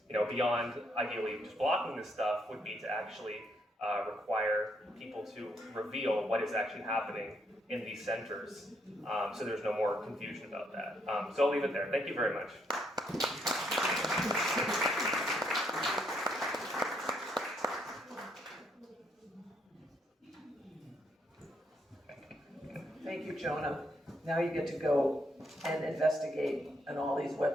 beyond ideally just blocking this stuff, would be to actually require people to reveal what is actually happening in these centers, so there's no more confusion about that. So I'll leave it there. Thank you very much. Thank you, Jonah. Now you get to go and investigate on all these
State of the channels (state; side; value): normal; both; correlation 0.74